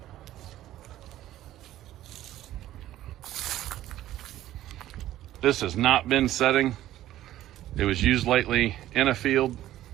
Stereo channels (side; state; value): left; quieter; 13.8 dB